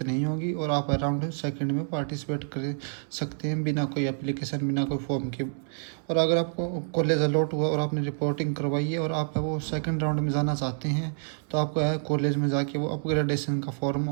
नहीं होगी और आप राउंड सेकंड में पार्टिसिपेट कर सकते हैं बिना कोई एप्लीकेशन, बिना कोई फॉर्म के। और अगर आपको कॉलेज अलॉट हुआ और आपने रिपोर्टिंग करवाई है और आप वो सेकंड राउंड में जाना चाहते हैं तो आपको है कॉलेज में जाके वो अपग्रेडेशन का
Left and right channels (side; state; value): left; silent; 59 dB below the other